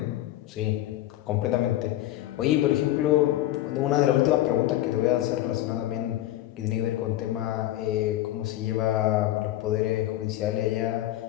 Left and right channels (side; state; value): right; quieter; 14.4 dB